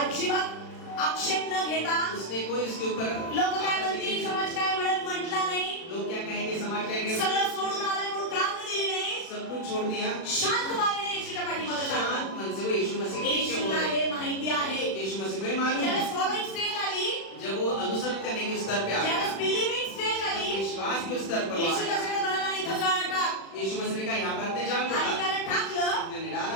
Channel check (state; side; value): late; right; 36 ms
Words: आक्षेप न घेता, उसने कोई उसके ऊपर लोक काय म्हणतील, समाज काय म्हणत म्हटला नाही, लोग क्या कहेंगे, समाज कहेंगे, सगळं सोडून आलाय म्हणून कारण दिली नाही, सब कुछ छोड़ दिया, शांत मानेने येशूच्या पाठीमागे शांत लागला. मन से वो यीशु मसीह के पीछे येशूला बोले। हे माहिती आहे. यीशु मसीह को ये मालूम ज्यावेळेस है। फॉलोइंग स्टेज आली, जब वो अनुसरण करने के स्तर पे आया, ज्यावेळेस बिलीविंग स्टेज आली, विश्वास के स्तर पर वो येशू आया, त्याच्याकडे म्हणाला, इथं जाळ टाक. यीशु मसीह ने कहा यहाँ पर अपने जाल को आणि डाल। त्याने टाकलं. उन्होंने